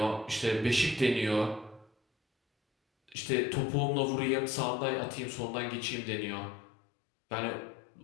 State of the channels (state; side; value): drops out; right; at 3.2 s